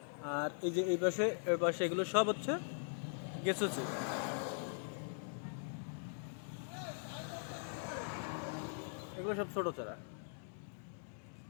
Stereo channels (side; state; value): right; silent; digital silence